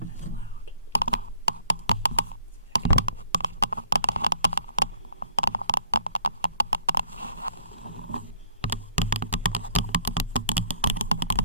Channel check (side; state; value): both; inverted; correlation -0.59